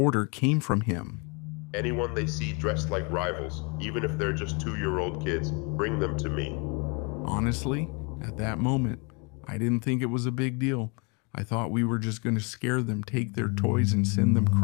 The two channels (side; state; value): right; quieter; 31.8 dB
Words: came from him. Anyone they see dressed like rivals, even if they're just 2-year-old kids, bring them to me. Honestly, at that moment, I didn't think it was a big deal. I thought we were just going to scare them, take their toys, and send them